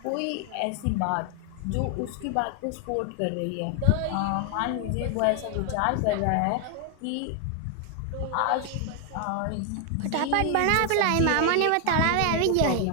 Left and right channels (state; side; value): different; both; correlation 0.00